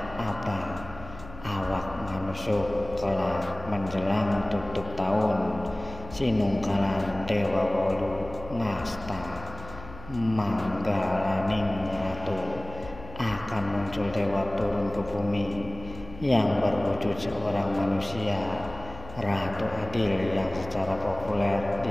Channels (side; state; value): left; noise; hum, 16 dB below the sound